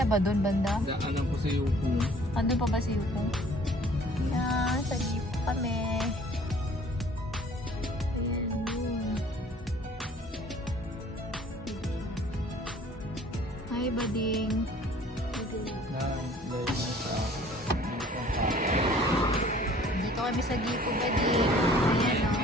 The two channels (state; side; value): normal; both; correlation 0.53